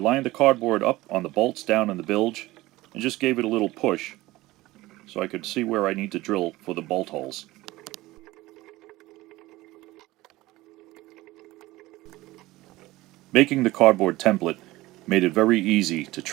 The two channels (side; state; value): left; quieter; 18.6 dB